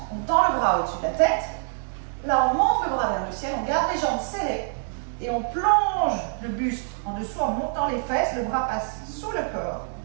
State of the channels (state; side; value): silent; left; digital silence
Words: on tend le bras au-dessus de la tête. Là, on monte le bras vers le ciel, on garde les jambes serrées et on plonge le buste en dessous en montant les fesses. Le bras passe sous le corps.